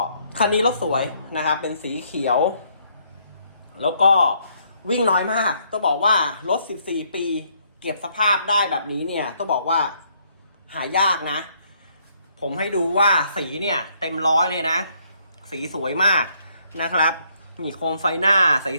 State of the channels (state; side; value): inverted; both; correlation -0.69